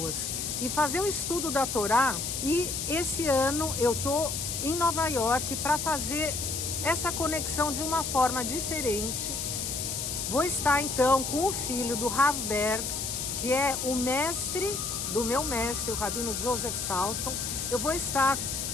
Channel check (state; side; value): noise; left; hiss, 3 dB below the sound